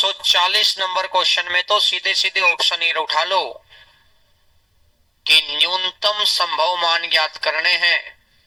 नंबर क्वेश्चन में तो सीधे सीधे ऑप्शन ये उठा लो कि न्यूनतम संभव मान ज्ञात करने हैं।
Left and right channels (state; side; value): identical; both; correlation 1.00